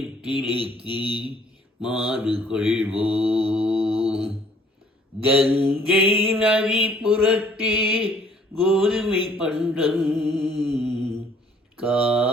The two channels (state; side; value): normal; both; correlation 0.59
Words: மாறு கொள்வோம். கங்கை நதி புறத்தே கோதுமை பண்டம்,